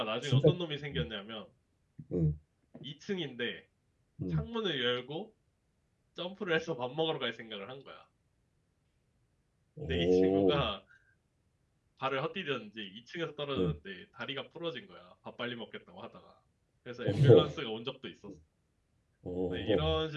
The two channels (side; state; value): both; identical; correlation 1.00